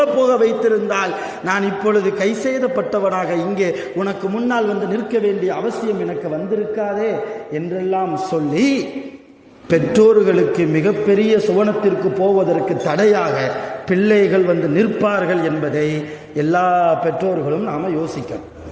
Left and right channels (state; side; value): identical; both; correlation 1.00